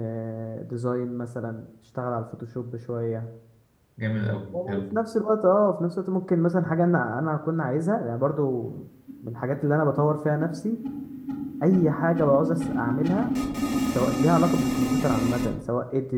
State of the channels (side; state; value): both; identical; correlation 1.00